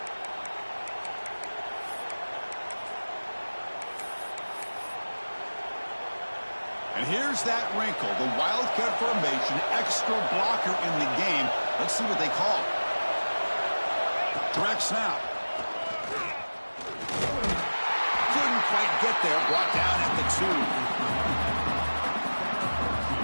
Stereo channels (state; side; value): inverted; both; correlation -1.00